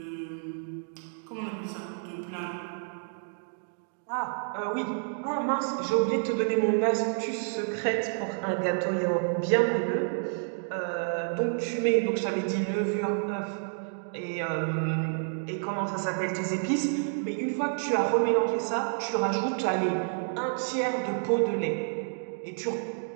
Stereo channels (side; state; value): left; silent; digital silence